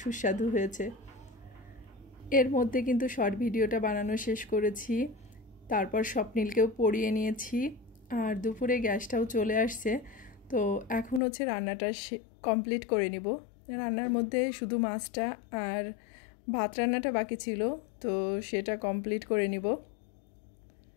সুস্বাদু হয়েছে। এর মধ্যে কিন্তু শর্ট ভিডিওটা বানানো শেষ করেছি, তারপর স্বপ্নিলকেও পড়িয়ে নিয়েছি, আর দুপুরে গ্যাসটাও চলে আসছে। তো এখন হচ্ছে রান্নাটা কমপ্লিট করে নিব। রান্নার মধ্যে শুধু মাছটা আর ভাত রান্নাটা বাকি ছিল, তো সেটা কমপ্লিট করে নিব।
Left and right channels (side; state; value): right; drops out; at 11.2 s